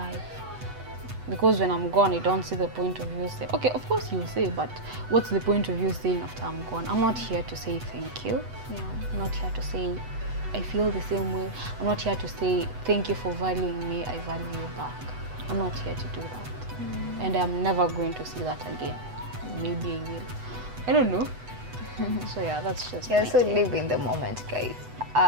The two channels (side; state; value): left; late; 8.0 ms